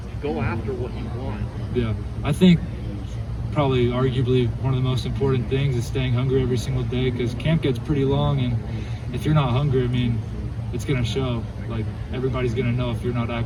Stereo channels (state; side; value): identical; both; correlation 1.00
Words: go after what you want? Yeah, I think probably arguably one of the most important things is staying hungry every single day, because camp gets pretty long, and if you're not hungry, I mean, it's going to show. Like, everybody's going to know if you're not